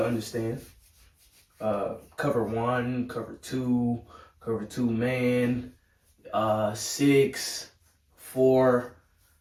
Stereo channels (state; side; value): identical; both; correlation 1.00